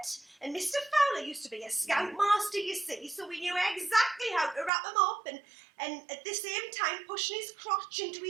and Mr. Fowler used to be a scoutmaster, you see, so we knew exactly how to wrap him up, and at the same time pushing his crotch into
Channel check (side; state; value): left; drops out; at 4.7 s